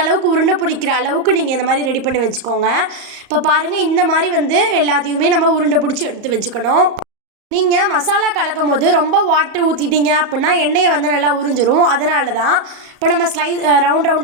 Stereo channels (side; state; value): left; late; 34 ms